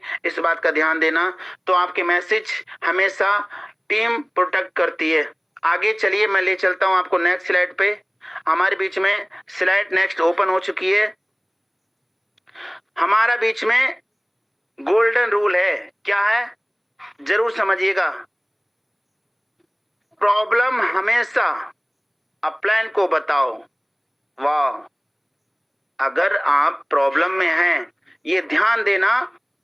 इस बात का ध्यान देना। तो आपके मैसेज हमेशा टीम प्रोटेक्ट करती है। आगे चलिए, मैं ले चलता हूं आपको नेक्स्ट स्लाइड पे। हमारे बीच में स्लाइड नेक्स्ट ओपन हो चुकी है। हमारा बीच में गोल्डन रूल है, क्या है जरूर समझिएगा। प्रॉब्लम हमेशा अपलाइन को बताओ। वाह, अगर आप प्रॉब्लम में हैं, ये ध्यान देना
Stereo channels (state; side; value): identical; both; correlation 1.00